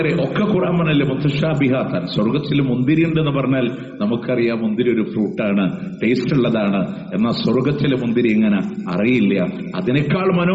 ഒക്കെ ഖുർആൻ പറഞ്ഞല്ലേ മുത്തശാബിഹാത്താൻ. സ്വർഗത്തിൽ മുന്തിരി ഉണ്ടെന്ന് പറഞ്ഞാൽ നമുക്കറിയാം മുന്തിരി ഒരു ഫ്രൂട്ടാണ്, ടേസ്റ്റ് ഉള്ളതാണ്. എന്നാൽ സ്വർഗത്തിലെ മുന്തിരി ഇങ്ങനെ അറിയില്ല, അതിനേക്കാൾ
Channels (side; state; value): both; identical; correlation 1.00